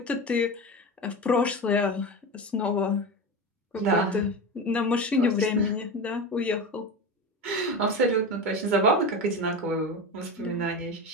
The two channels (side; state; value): both; normal; correlation 0.23